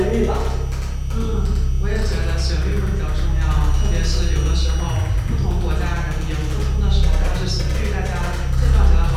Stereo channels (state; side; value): identical; both; correlation 1.00